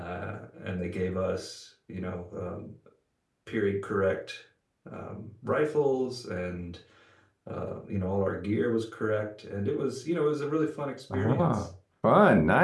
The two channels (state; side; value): identical; both; correlation 1.00